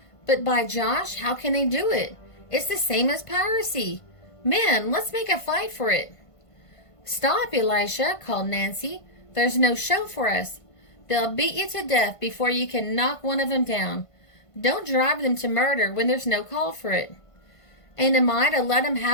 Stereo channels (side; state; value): right; late; 1.5 ms